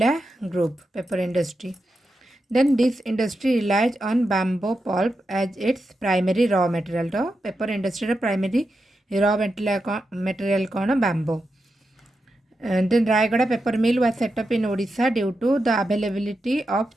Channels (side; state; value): both; normal; correlation 0.88